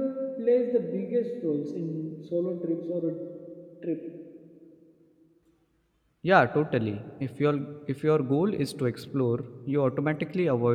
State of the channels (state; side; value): identical; both; correlation 1.00